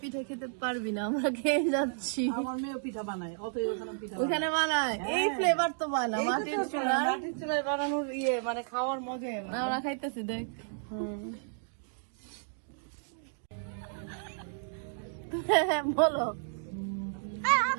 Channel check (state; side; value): silent; left; digital silence